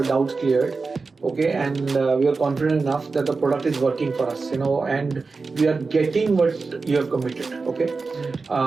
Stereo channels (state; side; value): quieter; left; 4.2 dB